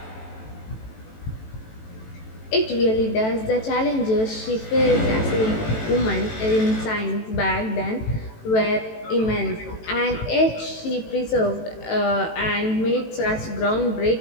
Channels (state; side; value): late; right; 18 ms